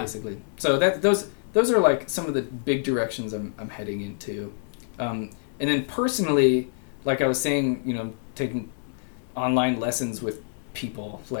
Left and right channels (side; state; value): right; silent; 61 dB below the other